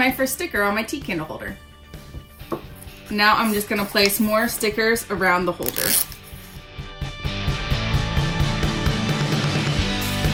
first sticker on my tea candle holder. Now I'm just going to place more stickers around the holder.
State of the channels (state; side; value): identical; both; correlation 1.00